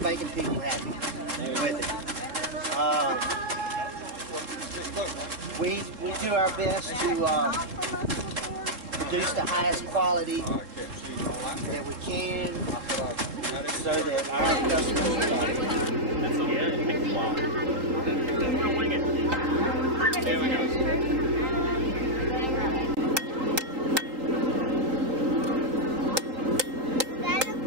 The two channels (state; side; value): late; left; 3.8 ms